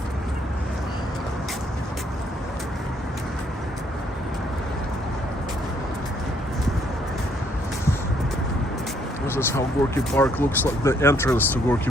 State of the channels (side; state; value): both; normal; correlation 0.68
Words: This is how Gorky Park looks like. The entrance to Gorky